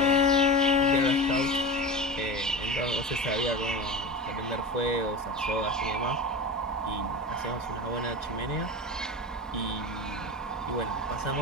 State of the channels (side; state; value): both; normal; correlation 0.29